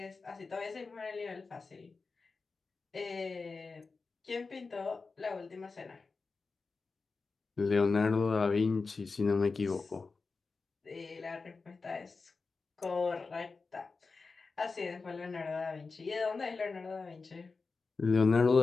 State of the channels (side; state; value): right; quieter; 4.3 dB